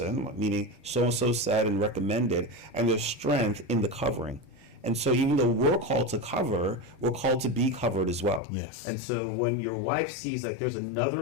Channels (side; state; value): right; drops out; at 8.4 s